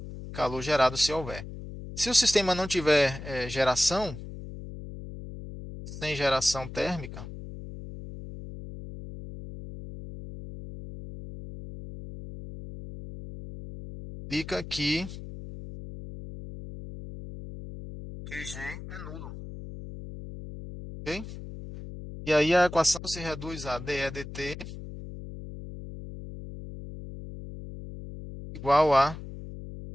calor gerado se houver. Se o sistema não tiver geração, sem geração térmica, fica que QG é nulo. Ok? E aí a equação se reduz a dEdt igual a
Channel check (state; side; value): noise; left; hum, 11 dB below the sound